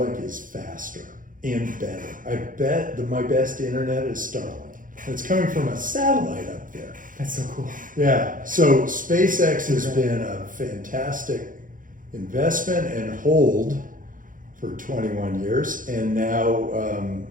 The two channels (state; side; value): late; left; 0.39 ms